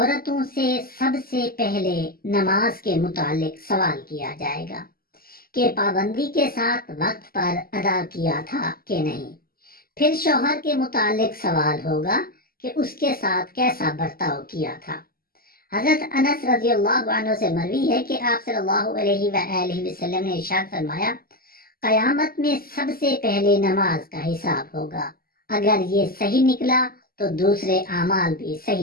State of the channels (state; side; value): late; right; 0.43 ms